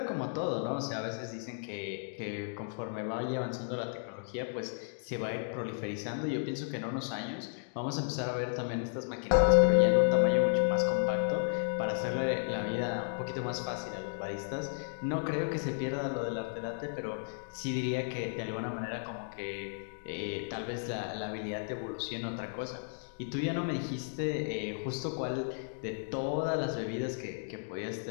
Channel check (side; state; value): right; silent; digital silence